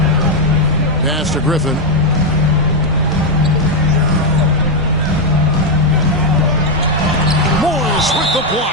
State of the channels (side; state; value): both; normal; correlation 0.02